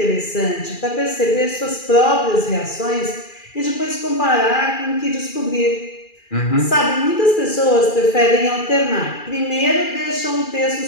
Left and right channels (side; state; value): right; late; 2.4 ms